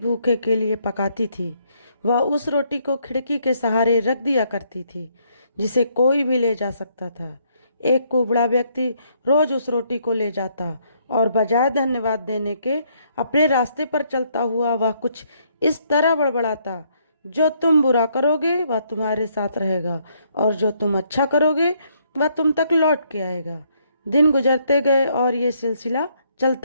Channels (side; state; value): both; inverted; correlation -0.71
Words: के लिए पकाती थी। वह उस रोटी को खिड़की के सहारे रख दिया करती थी, जिसे कोई भी ले जा सकता था। एक कुबड़ा व्यक्ति रोज उस रोटी को ले जाता और बजाय धन्यवाद देने के अपने रास्ते पर चलता हुआ वह कुछ इस तरह बड़बड़ाता, जो तुम बुरा करोगे वह तुम्हारे साथ रहेगा और जो तुम अच्छा करोगे वह तुम तक लौट के आएगा। दिन गुजरते गए और ये सिलसिला